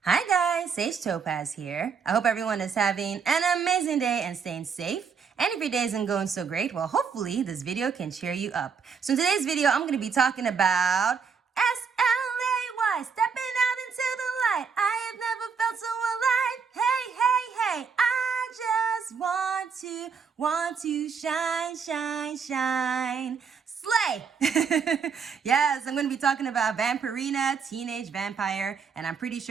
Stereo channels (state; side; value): quieter; left; 6.0 dB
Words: Hi guys, Sage Topaz here. I hope everyone is having an amazing day and staying safe. And if your day isn't going so great, well, hopefully this video can cheer you up. So in today's video, I'm going to be talking about SLAY, stepping out into the light. I have never felt so alive. Hey, hey, hey, I just want to shine, shine, shine. Slay! Yes, I'm going to be talking about Vampirina, Teenage Vampire, and I'm pretty